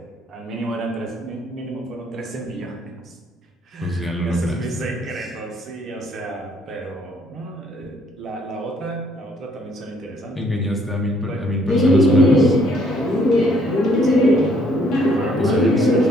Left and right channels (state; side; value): normal; both; correlation 0.65